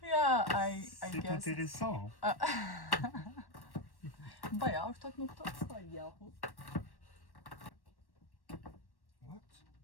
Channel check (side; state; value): right; late; 1.1 ms